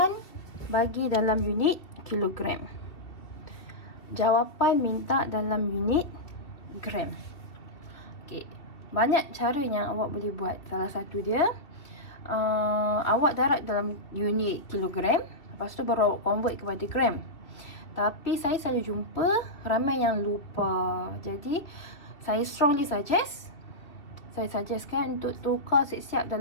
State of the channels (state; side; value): late; right; 2.7 ms